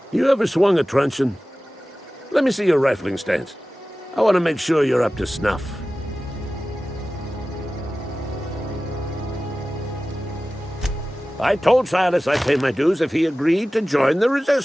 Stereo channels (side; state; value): both; normal; correlation 0.96